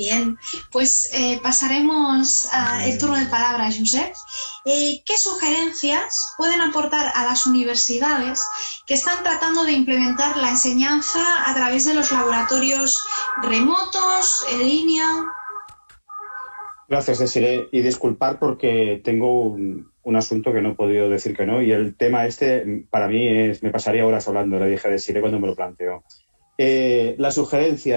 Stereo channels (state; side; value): inverted; both; correlation -1.00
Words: pues pasaremos al turno de palabra a Josep. ¿Qué sugerencias pueden aportar a las universidades que están tratando de implementar la enseñanza a través de los laboratorios remotos, en línea? Gracias, Desiree. Y disculpar porque tengo un asunto que no he podido decir que no, y el tema para mí me pasaría horas hablando, le dije a Desiree cuando me lo planteó. Las